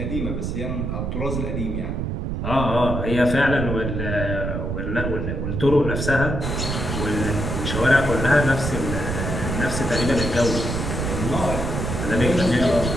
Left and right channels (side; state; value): right; noise; rumble, 2 dB below the sound